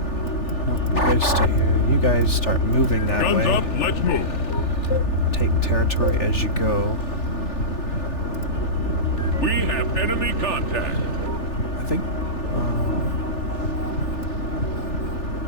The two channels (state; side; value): late; right; 3.4 ms